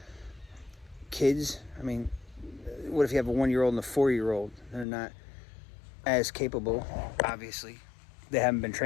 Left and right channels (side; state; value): right; drops out; at 4.9 s